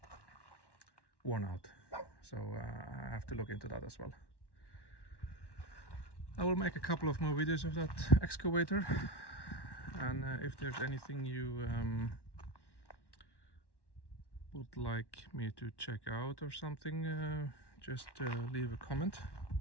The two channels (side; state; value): right; late; 1.1 ms